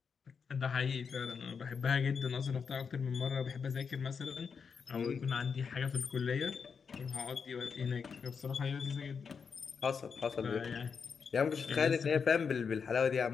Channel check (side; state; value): right; quieter; 6.0 dB